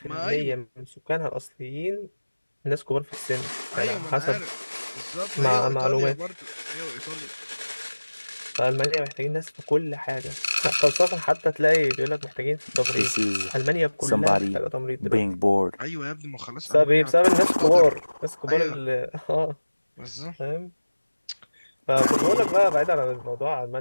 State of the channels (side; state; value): both; inverted; correlation -1.00